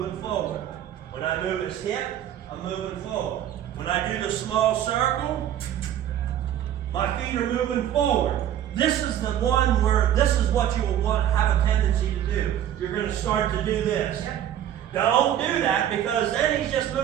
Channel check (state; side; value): quieter; left; 10.9 dB